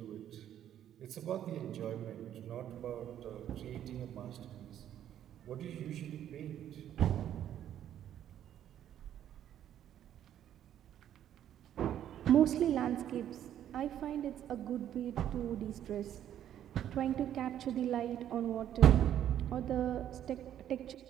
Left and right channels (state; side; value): quieter; left; 10.8 dB